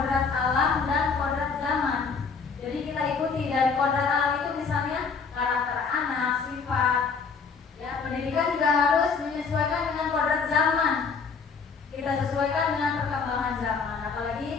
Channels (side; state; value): right; quieter; 5.2 dB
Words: alam dan kodrat zaman. Jadi kita ikuti dari kodrat alam itu misalnya karakter anak, sifat. Ya, pendidikan juga harus menyesuaikan dengan kodrat zaman. Kita sesuaikan dengan perkembangan zaman. Apalagi